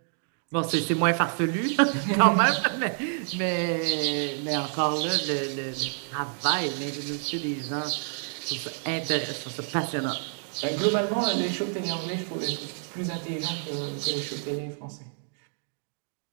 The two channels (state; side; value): silent; left; 59 dB below the other